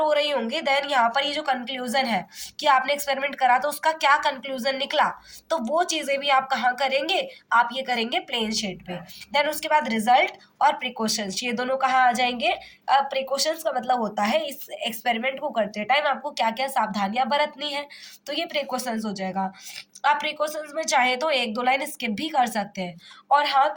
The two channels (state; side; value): identical; both; correlation 1.00